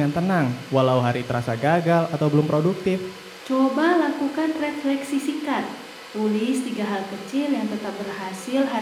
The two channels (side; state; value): both; identical; correlation 1.00